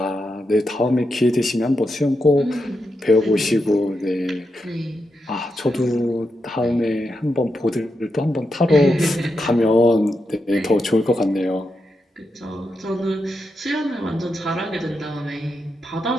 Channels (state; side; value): normal; both; correlation 0.86